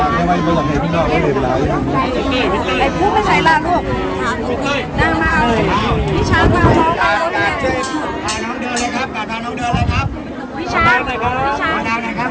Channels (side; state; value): both; identical; correlation 1.00